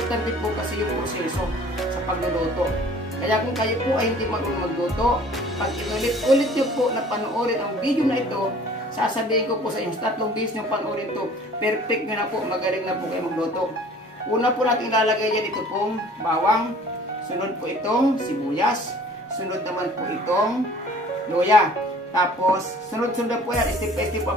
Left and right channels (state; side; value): normal; both; correlation 0.50